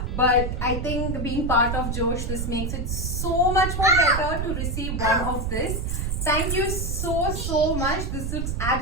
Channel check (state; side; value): noise; right; rumble, 2 dB below the sound